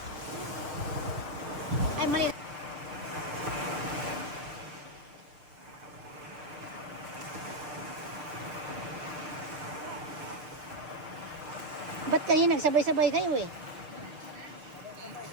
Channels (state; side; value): late; left; 6.5 ms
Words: Ay, mali. Ba't kayo nagsabay-sabay kayo eh?